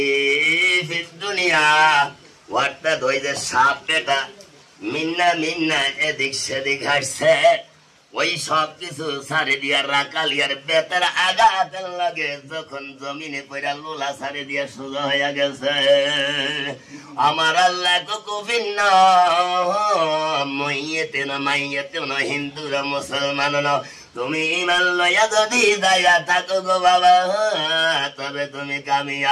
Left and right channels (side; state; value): both; identical; correlation 1.00